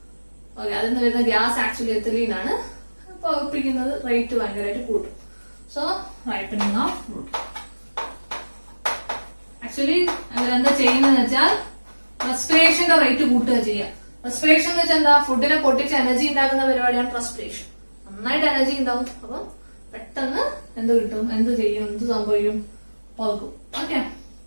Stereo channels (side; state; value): both; inverted; correlation -1.00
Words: ഓക്കെ, അതിൽ നിന്ന് വരുന്ന ഗ്യാസ് ആക്ച്വലി എഥിലീൻ ആണ്. പഴുപ്പിക്കുന്നത് റേറ്റ് ഭയങ്കരമായിട്ട് കൂട്ടും. So ripening of fruit. Actually അവരെന്താ ചെയ്യുന്നതെന്ന് വെച്ചാൽ റെസ്പിറേഷന്റെ റേറ്റ് കൂട്ടുക ചെയ്യുക. റെസ്പിറേഷൻ എന്ന് വെച്ചാൽ എന്താ? ഫുഡിനെ പൊട്ടിച്ച് എനർജി ഉണ്ടാക്കുന്ന പരിപാടിയാണ് റെസ്പിറേഷൻ. നന്നായിട്ട് എനർജി ഉണ്ടാവും. അപ്പൊ പെട്ടെന്ന് എന്ത് കിട്ടും? എന്ത് ചെയ്യും? എന്ത് സംഭവിക്കും? പഴുക്കും. ഓക്കെ,